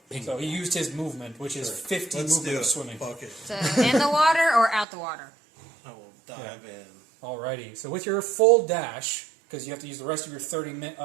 So he used his movement, which is 50 Let's movement do of it. swimming. Fuck it. So in the water or out the water? I will dive in. Alrighty. So with your full dash, because you have to use the rest of your 30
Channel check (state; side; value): drops out; left; at 4.9 s